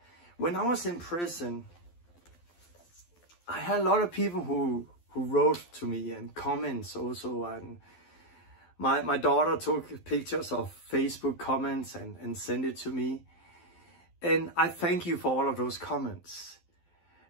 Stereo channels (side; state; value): right; late; 12 ms